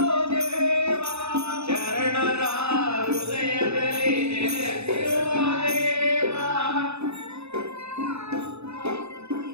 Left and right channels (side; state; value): left; late; 0.80 ms